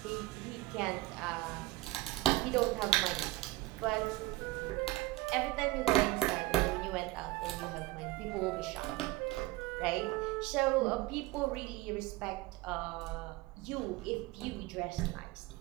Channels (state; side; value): quieter; left; 19.0 dB